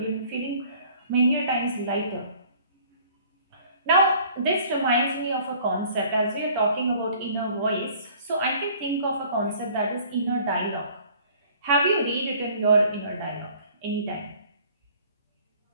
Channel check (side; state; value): both; inverted; correlation -0.53